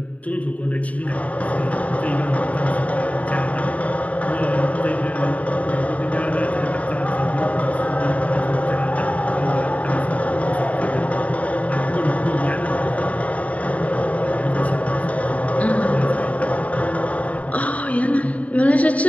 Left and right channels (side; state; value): right; late; 0.068 ms